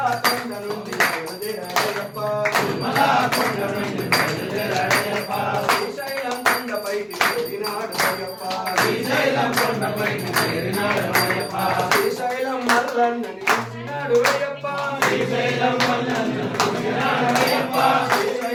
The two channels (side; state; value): both; identical; correlation 1.00